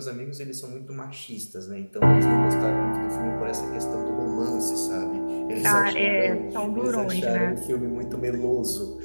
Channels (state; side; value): inverted; both; correlation -1.00